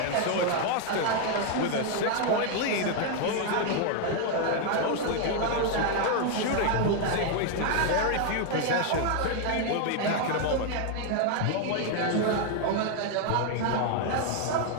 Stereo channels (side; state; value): both; different; correlation 0.00